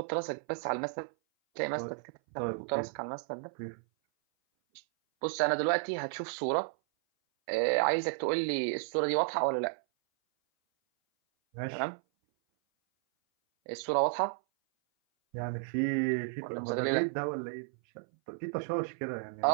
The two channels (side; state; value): left; silent; 56 dB below the other